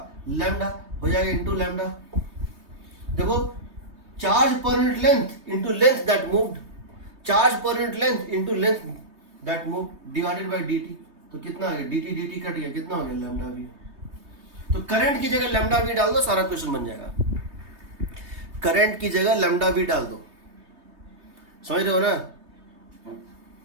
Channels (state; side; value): late; left; 3.2 ms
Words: लैम्डा हो जाएगा इंटू लैम्डा, देखो, charge per unit length into length that moved, charge per unit length into length that moved divided by dt, तो कितना आ गया, dt कट गया, कितना हो गया, लैम्डा v। तो करंट की जगह लैम्डा v डाल दो, सारा क्वेश्चन बन जाएगा, करंट की जगह लैम्डा v डाल दो, समझ रहे हो ना।